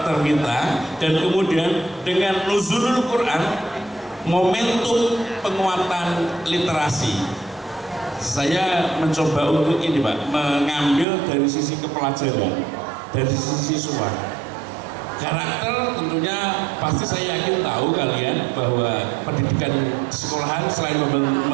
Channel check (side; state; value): left; drops out; at 11.1 s